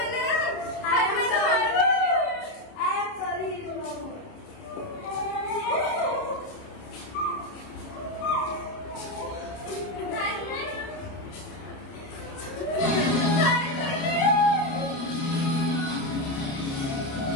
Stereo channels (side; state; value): right; late; 29 ms